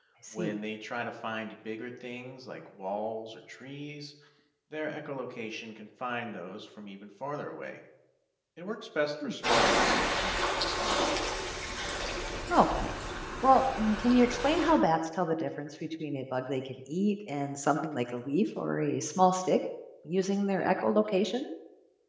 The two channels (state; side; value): identical; both; correlation 1.00